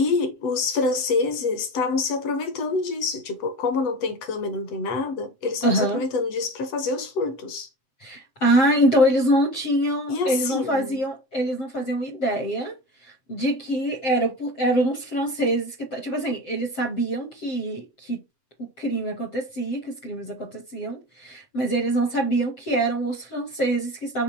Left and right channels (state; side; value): late; right; 7.7 ms